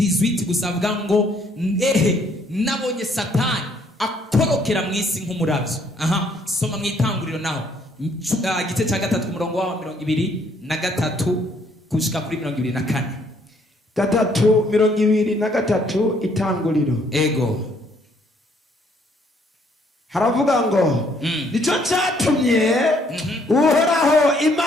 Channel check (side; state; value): both; normal; correlation 0.66